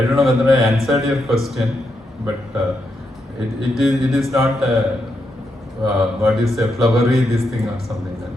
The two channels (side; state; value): both; normal; correlation 0.82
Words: don't know whether I answered your question, but it is not what is a flowery this thing or something